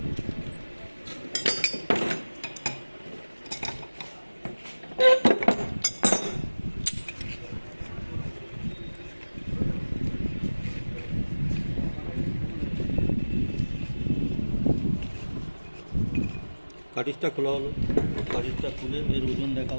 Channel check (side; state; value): both; inverted; correlation -1.00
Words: কাটিজটা খোলা হলো, কাটিজটা খুলে এর ওজন দেখা